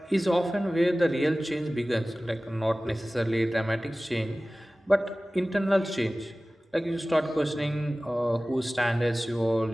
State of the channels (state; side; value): normal; both; correlation 0.97